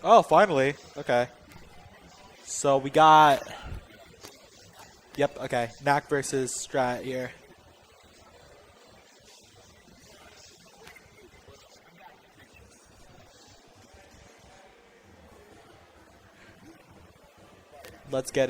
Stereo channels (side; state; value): both; identical; correlation 1.00